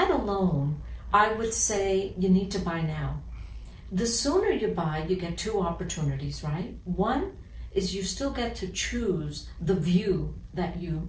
alone, I would say you need to buy now. The sooner you buy, you get 2 opportunities, right? One is you still get to choose the view that you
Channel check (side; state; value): both; identical; correlation 1.00